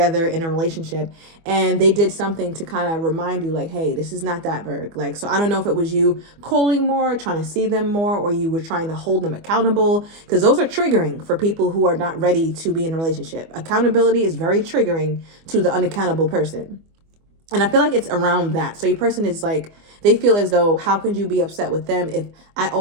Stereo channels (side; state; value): left; late; 25 ms